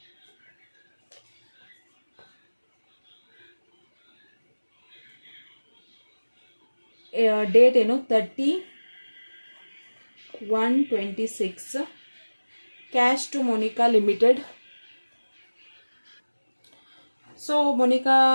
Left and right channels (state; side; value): inverted; both; correlation -1.00